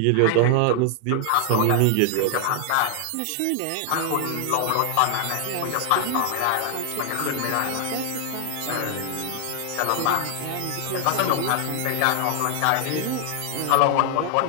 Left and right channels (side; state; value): both; different; correlation 0.00